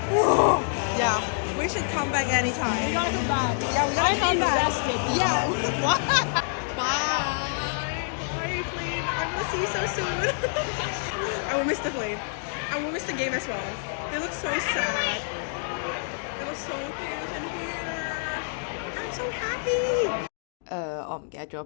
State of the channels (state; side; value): silent; right; digital silence